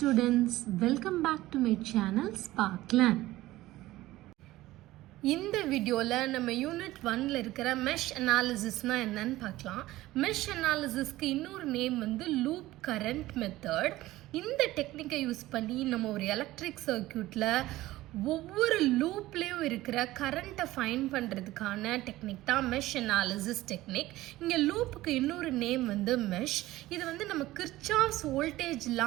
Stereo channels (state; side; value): quieter; left; 16.9 dB